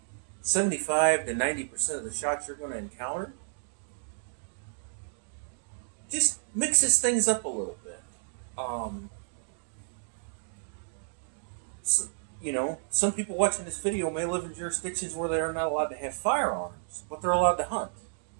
75 to 90% of the shots you're going to encounter. Just mixes things up a little bit. Some people watching this video may live in jurisdictions where they are not allowed to have firearms, but they're allowed to hunt.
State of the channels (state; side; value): silent; left; digital silence